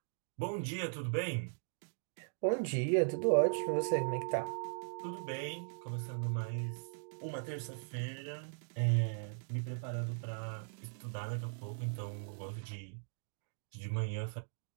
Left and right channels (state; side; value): silent; left; digital silence